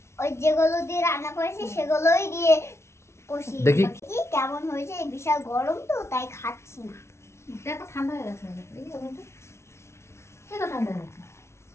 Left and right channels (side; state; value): right; late; 0.13 ms